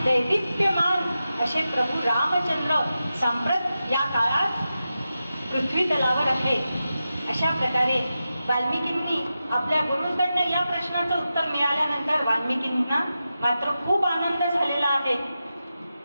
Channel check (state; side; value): inverted; both; correlation -0.91